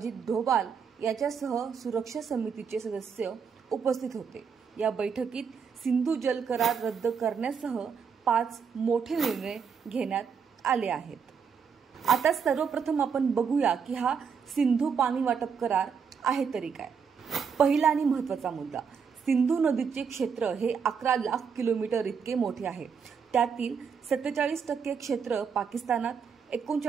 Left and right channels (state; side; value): quieter; left; 6.4 dB